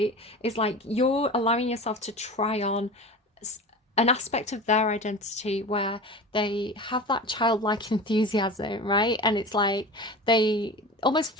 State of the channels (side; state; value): both; normal; correlation 0.33